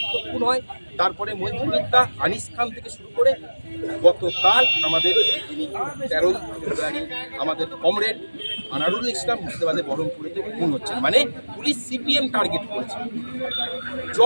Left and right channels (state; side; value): inverted; both; correlation -1.00